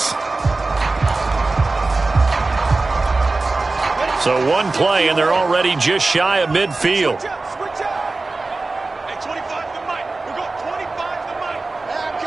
So one play, and they're already just shy of midfield.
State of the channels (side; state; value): left; quieter; 3.5 dB